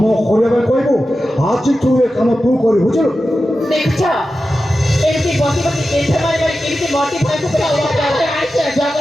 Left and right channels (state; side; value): normal; both; correlation 0.92